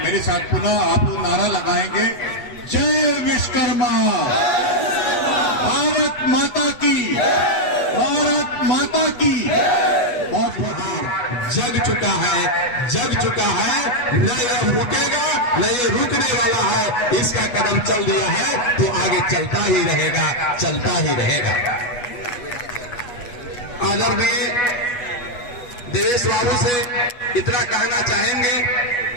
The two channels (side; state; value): right; late; 8.2 ms